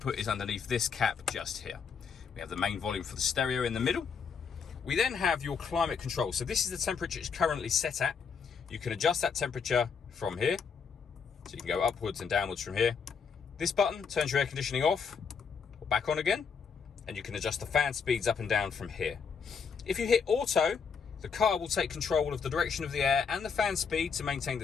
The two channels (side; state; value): right; quieter; 6.0 dB